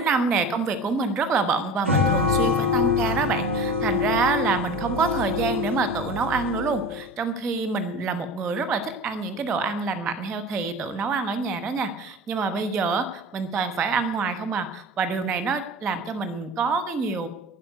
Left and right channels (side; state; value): both; normal; correlation 0.35